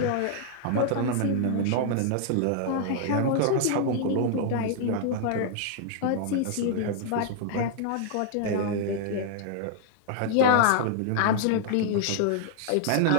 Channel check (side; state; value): both; different; correlation 0.00